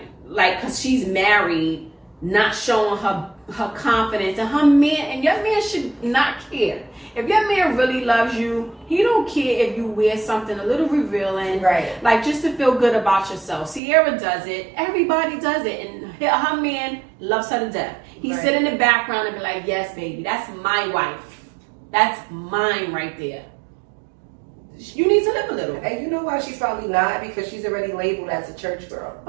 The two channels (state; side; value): drops out; left; at 13.8 s